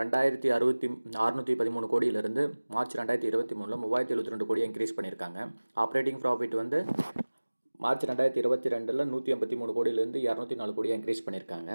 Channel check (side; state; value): both; inverted; correlation -1.00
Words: கோடியிலிருந்து மார்ச் 2023 3072 கோடியை இன்க்ரீஸ் பண்ணியிருக்காங்க. ஆப்ரேட்டிங் ப்ராஃபிட் வந்து மார்ச் 2022 183 கோடியிலேருந்து 204 கோடியாக இன்க்ரீஸ் பண்ணியிருக்காங்க.